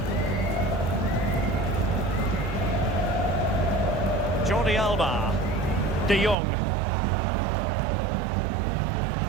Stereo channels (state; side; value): drops out; left; at 6.4 s